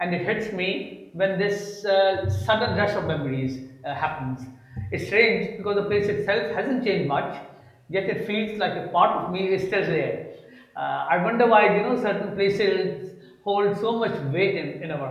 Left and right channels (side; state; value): both; identical; correlation 1.00